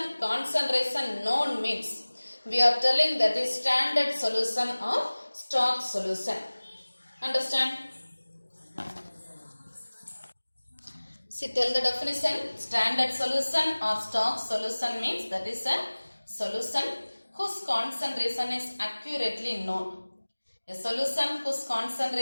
concentration known means we are telling that is standard solution or stock solution. Understand? See, tell the definition. Standard solution or stock solution means that is a solution whose concentration is accurately known. A solution whose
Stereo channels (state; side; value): inverted; both; correlation -1.00